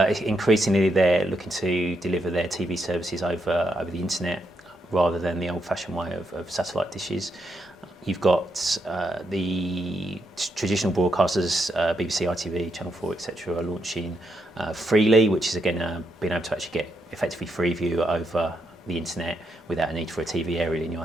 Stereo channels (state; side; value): normal; both; correlation 0.80